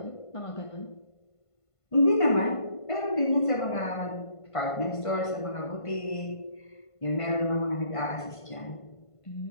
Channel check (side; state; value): right; late; 1.5 ms